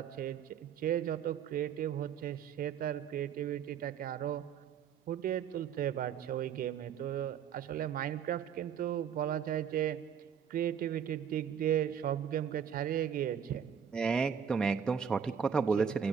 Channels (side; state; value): left; quieter; 7.9 dB